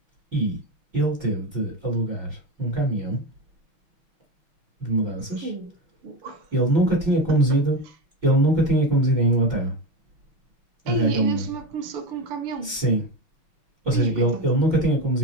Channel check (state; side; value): late; left; 6.1 ms